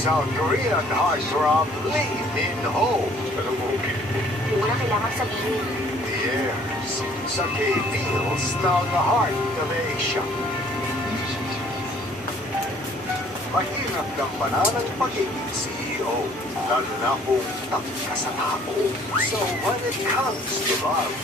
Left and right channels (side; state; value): both; normal; correlation 0.58